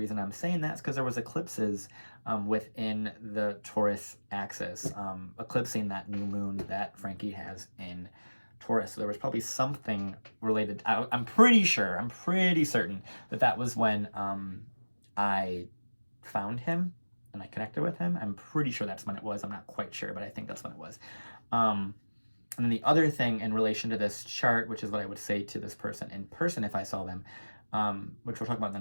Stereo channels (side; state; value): both; inverted; correlation -1.00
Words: I'm saying that is because there was eclipses within the Taurus axis, eclipsing that new moon that Frankie has in Taurus. So there was probably something related. I'm pretty certain that that was when I found him and I connected with him. I'm pretty sure that's when it was. I'm not quite sure, but I think that's when it was. And then the other thing in relation to this chart, which is what I would say to this person in person if I saw them, which we'll talk about in the